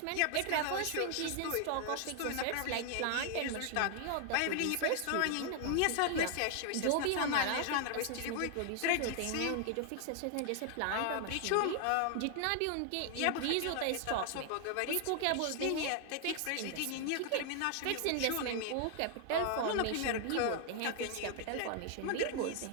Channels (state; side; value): different; both; correlation 0.00